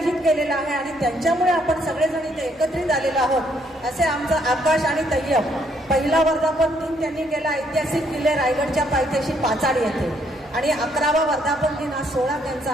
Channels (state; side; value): normal; both; correlation 0.70